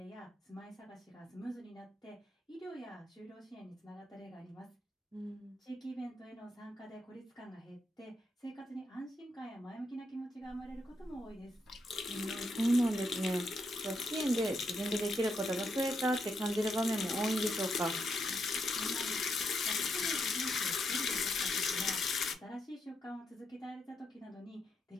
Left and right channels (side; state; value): both; normal; correlation 0.80